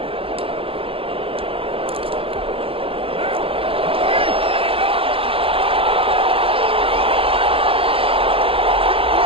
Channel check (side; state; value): left; late; 0.27 ms